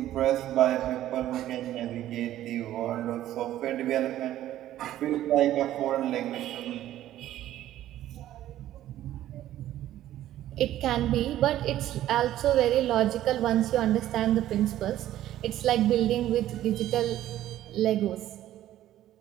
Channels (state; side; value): quieter; left; 13.1 dB